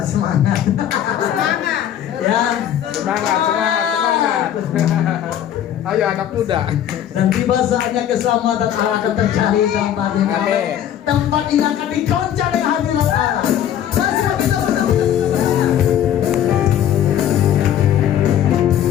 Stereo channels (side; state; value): right; quieter; 10.5 dB